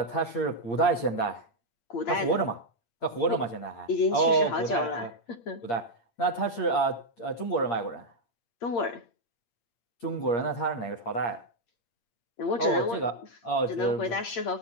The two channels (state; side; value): late; right; 8.6 ms